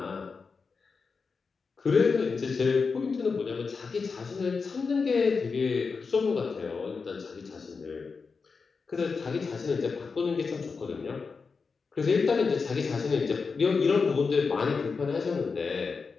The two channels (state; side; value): quieter; right; 4.9 dB